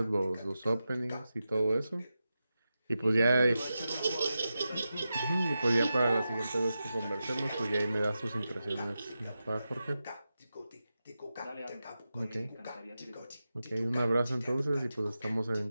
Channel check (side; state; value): both; inverted; correlation -0.91